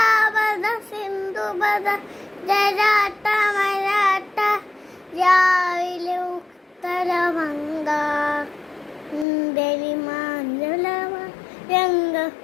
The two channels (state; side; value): drops out; right; at 9.2 s